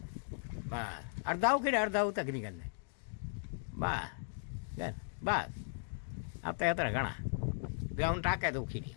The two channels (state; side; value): silent; right; digital silence